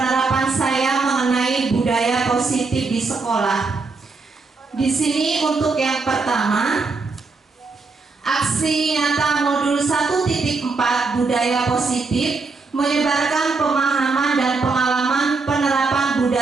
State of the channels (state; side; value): quieter; left; 4.1 dB